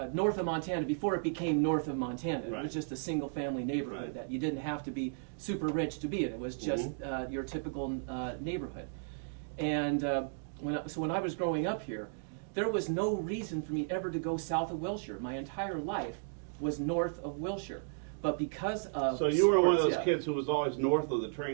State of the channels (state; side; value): silent; left; digital silence